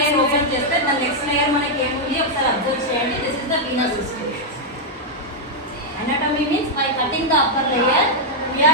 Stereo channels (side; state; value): both; normal; correlation -0.02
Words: ఓపెన్ చేస్తే దాని నెక్స్ట్ లేయర్ మనకి ఏముంది ఒకసారి అబ్జర్వ్ చేయండి. This is the Venus system. Anatomy means by cutting the upper layer, we